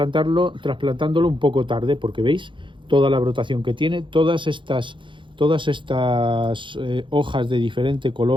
un poco tarde, porque veis toda la brotación que tiene, todas estas hojas de diferente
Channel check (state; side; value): late; left; 0.24 ms